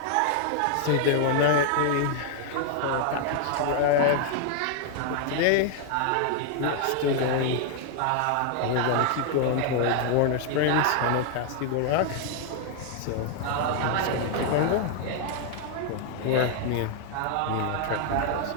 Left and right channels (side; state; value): both; different; correlation 0.00